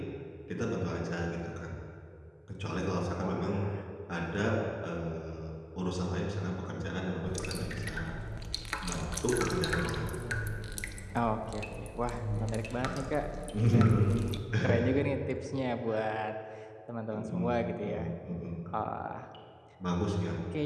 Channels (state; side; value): identical; both; correlation 1.00